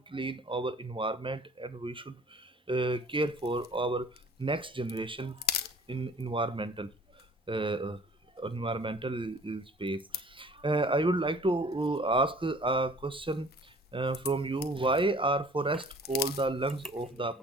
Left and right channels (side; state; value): both; normal; correlation 0.51